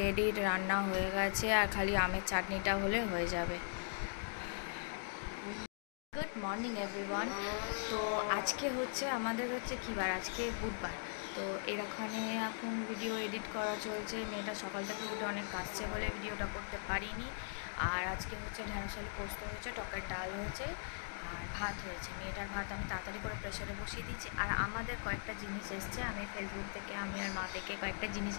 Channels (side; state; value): right; silent; digital silence